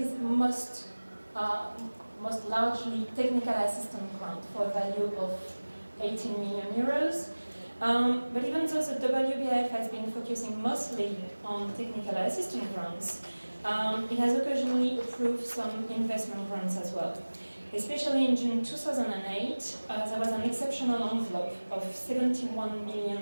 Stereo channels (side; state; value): both; inverted; correlation -1.00